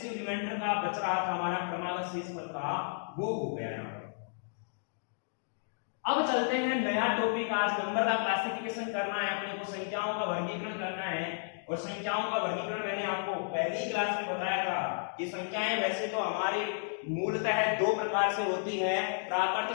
रिमाइंडर का बच रहा था हमारा क्रमागत शेषफल का, वो हो गया यहाँ पर। अब चलते हैं नया टॉपिक, आज नंबर का क्लासिफिकेशन करना है अपने को, संख्याओं का वर्गीकरण करना है। और संख्याओं का वर्गीकरण मैंने आपको पहली क्लास में बताया था कि संख्याएं वैसे तो हमारी मूलतः 2 प्रकार से होती है, प्राकृत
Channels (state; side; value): silent; right; digital silence